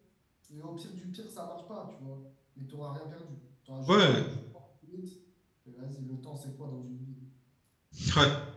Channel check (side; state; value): both; identical; correlation 1.00